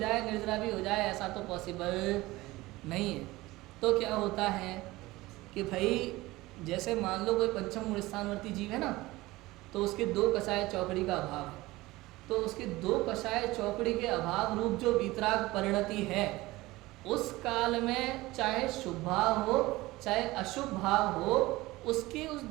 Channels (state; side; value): quieter; left; 19.4 dB